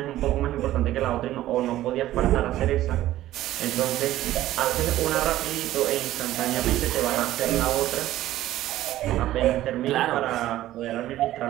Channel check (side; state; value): left; quieter; 14.4 dB